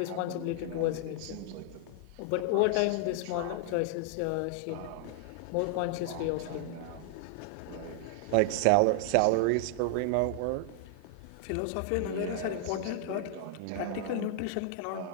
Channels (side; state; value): both; different; correlation -0.01